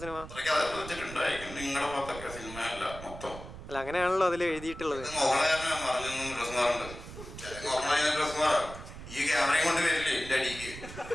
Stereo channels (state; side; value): noise; right; rumble, 13 dB below the sound